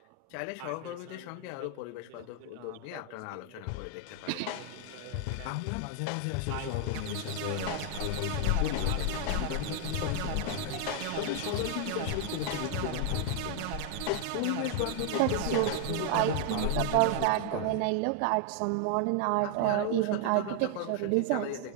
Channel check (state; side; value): different; both; correlation 0.00